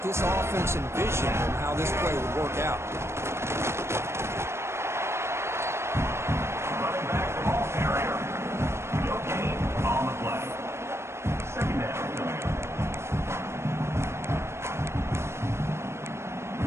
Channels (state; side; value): late; left; 0.13 ms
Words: this offense envisioned and how this play would work out. Running back the ball carrier. No gain on the play. Second down coming up.